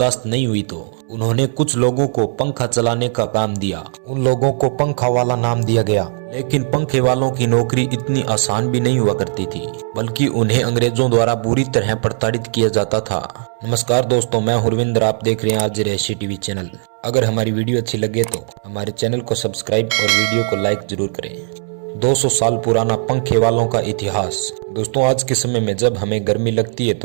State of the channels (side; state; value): left; silent; digital silence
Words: नहीं हुई तो उन्होंने कुछ लोगों को पंखा चलाने का काम दिया। उन लोगों को पंखा वाला नाम दिया गया, लेकिन पंखे वालों की नौकरी इतनी आसान भी नहीं हुआ करती थी, बल्कि उन्हें अंग्रेजों द्वारा बुरी तरह प्रताड़ित किया जाता था। नमस्कार दोस्तों, मैं हुरविंदर, आप देख रहे हैं आज रहस्य टीवी चैनल। अगर हमारी वीडियो अच्छी लगे तो हमारे चैनल को सब्सक्राइब और वीडियो को लाइक जरूर करें। 200 साल पुराना पंखे वालों का इतिहास। दोस्तों, आज के समय में जब हमें गर्मी लगती है